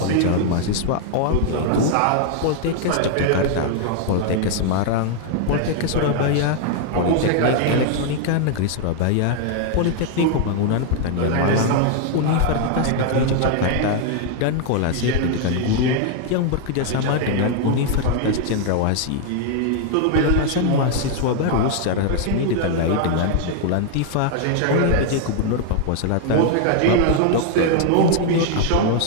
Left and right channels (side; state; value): both; different; correlation 0.00